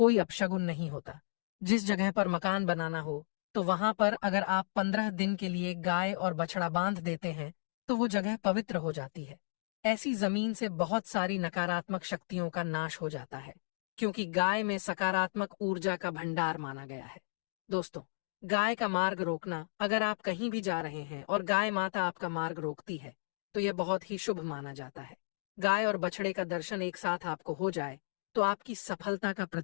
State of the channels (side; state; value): right; silent; digital silence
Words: अपशगुन नहीं होता। जिस जगह पर मकान बनाना हो तो वहां पर अगर आप 15 दिन के लिए गाय और बछड़ा बांध देते हैं तो वो जगह पवित्र हो जाती है। ऐसी जमीन से बहुत सारी नकारात्मक शक्तियों का नाश हो जाता है, क्योंकि गाय में सकारात्मक ऊर्जा का भंडार माना गया है। दोस्तों, गाय का मार्ग रोकना, अगर आप कहीं भी जा रहे हैं और गाय माता आपका मार्ग रोकती है तो यह बहुत ही शुभ माना जाता है। गाय और बछड़े का दर्शन एक साथ आपको हो जाए तो आपकी सफलता का